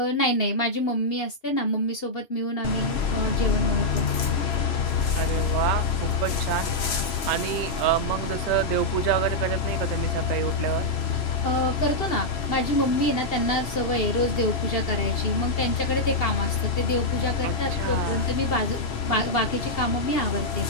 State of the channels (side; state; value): right; late; 3.0 ms